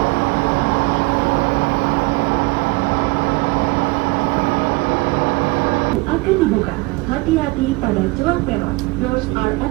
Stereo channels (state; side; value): quieter; left; 24.2 dB